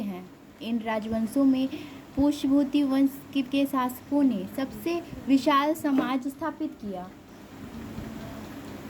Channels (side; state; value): both; identical; correlation 1.00